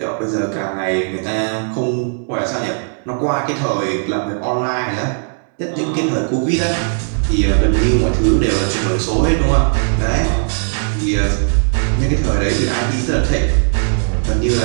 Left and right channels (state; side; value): silent; left; digital silence